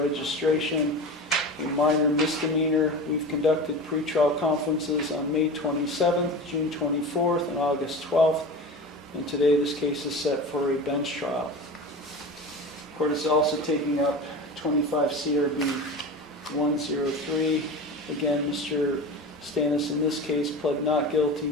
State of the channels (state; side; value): normal; both; correlation 0.31